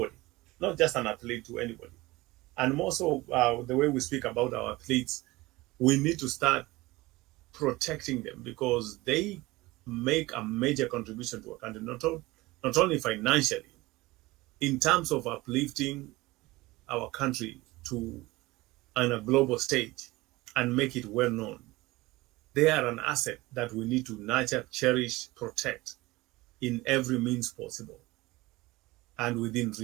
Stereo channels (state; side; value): quieter; left; 20.4 dB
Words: not just an athlete, to anybody. And more so, the way we speak about our athletes, we need to start protecting them, because they make a major contribution to a country, not only financially, in terms of uplifting our country to on a global stage and make it well known. They are an asset that we need to nurture, cherish, protect in every means possible and within